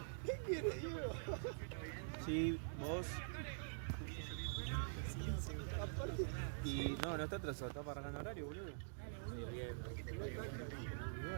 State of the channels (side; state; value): left; silent; digital silence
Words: ¿Qué quiere, Diego? Sí, vos. Y no está atrasado, está para arrancar horario, boludo. Y